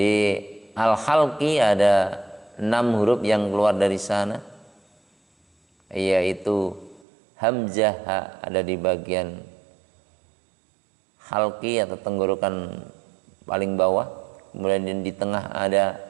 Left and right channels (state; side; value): drops out; left; at 7.0 s